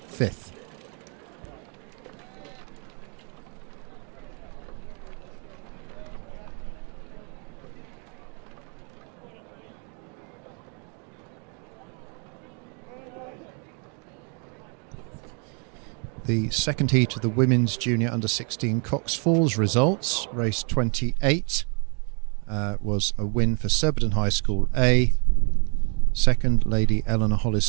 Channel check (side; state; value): left; quieter; 37.2 dB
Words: 5th. The second heat of the Women's Junior Under-16 Cox Falls results. Race 28 was a win for Surbiton High School A, second Lady Eleanor Hollis